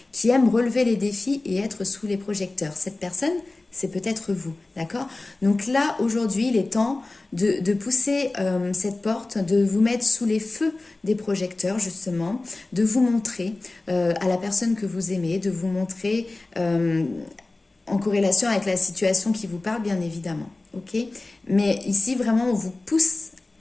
qui aime relever les défis et être sous les projecteurs. Cette personne, c'est peut-être vous, d'accord? Donc là, aujourd'hui, il est temps de pousser cette porte, de vous mettre sous les feux des projecteurs, justement, de vous montrer à la personne que vous aimez, de vous montrer en corrélation avec la situation qui vous parle, bien évidemment, ok? Mais ici, vraiment, on vous pousse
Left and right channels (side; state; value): right; quieter; 3.1 dB